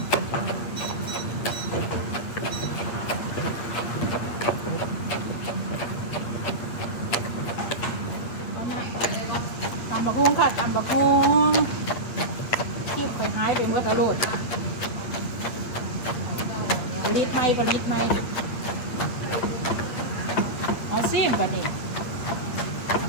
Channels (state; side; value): late; right; 8.7 ms